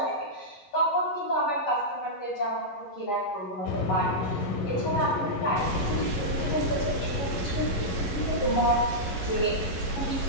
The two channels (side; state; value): right; late; 11 ms